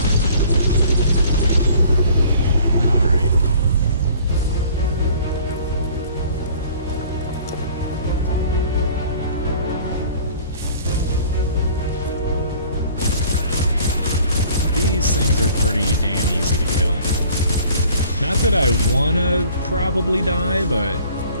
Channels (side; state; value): both; inverted; correlation -0.52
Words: Alright. These things are pretty damn easy to kill. Not that I wanna probably die, but